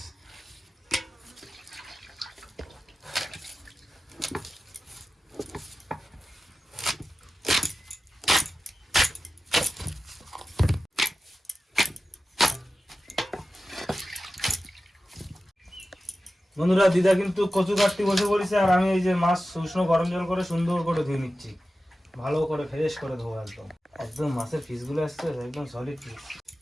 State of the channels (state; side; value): normal; both; correlation 0.94